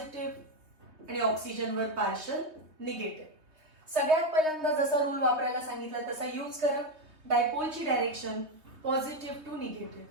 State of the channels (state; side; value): late; left; 3.1 ms